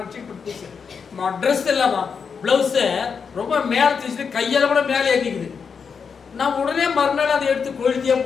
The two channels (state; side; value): quieter; right; 6.0 dB